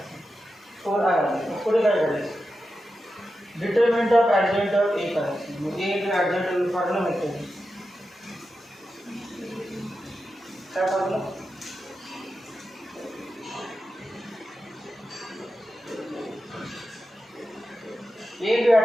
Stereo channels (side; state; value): both; normal; correlation 0.90